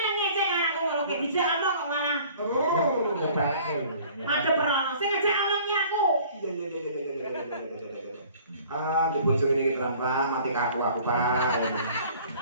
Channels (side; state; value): both; inverted; correlation -0.51